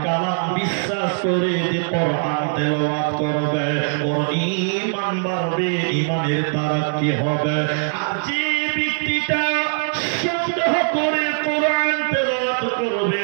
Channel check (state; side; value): silent; left; 65 dB below the other